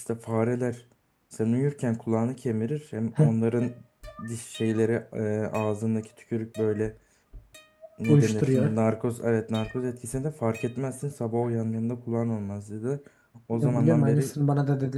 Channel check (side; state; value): both; identical; correlation 1.00